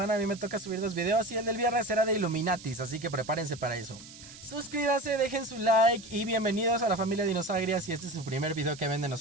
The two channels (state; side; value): noise; right; hiss, 17 dB below the sound